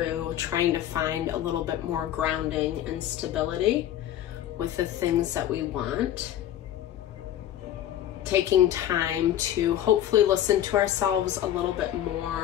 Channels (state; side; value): quieter; right; 11.7 dB